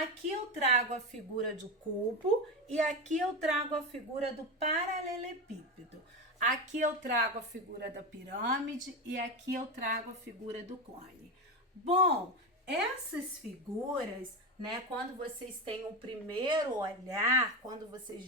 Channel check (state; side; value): normal; both; correlation 0.17